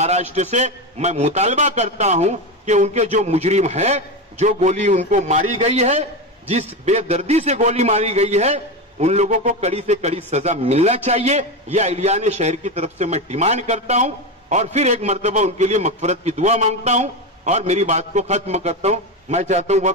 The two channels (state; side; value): normal; both; correlation 0.17